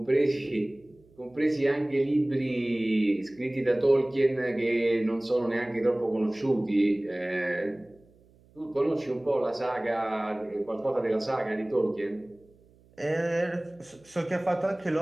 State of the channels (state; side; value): noise; right; hum, 29 dB below the sound